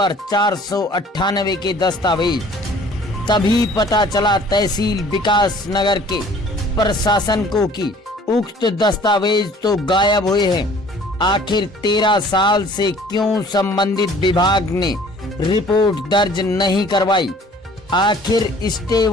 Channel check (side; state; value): both; normal; correlation 0.52